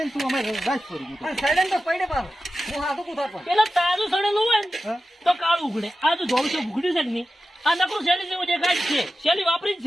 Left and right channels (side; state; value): both; normal; correlation 0.92